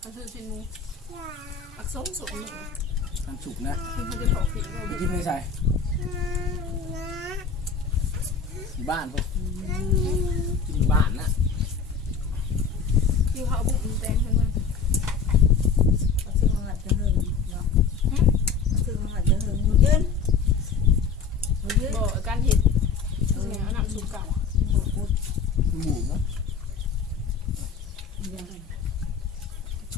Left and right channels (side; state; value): right; quieter; 5.4 dB